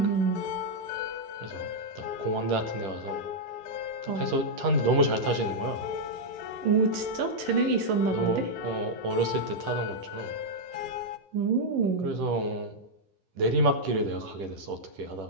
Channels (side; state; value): left; late; 10 ms